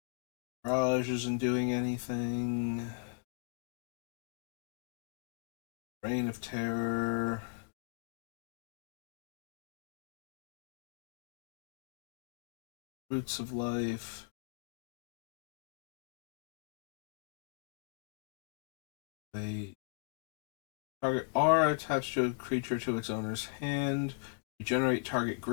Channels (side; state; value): right; silent; digital silence